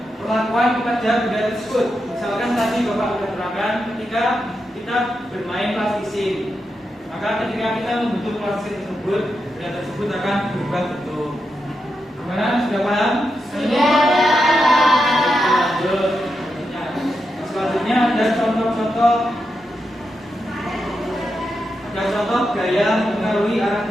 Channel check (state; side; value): normal; both; correlation 0.86